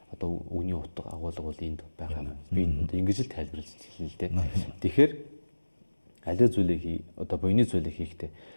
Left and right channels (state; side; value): inverted; both; correlation -1.00